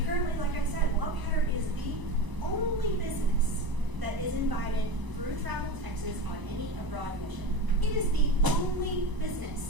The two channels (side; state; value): left; late; 1.0 ms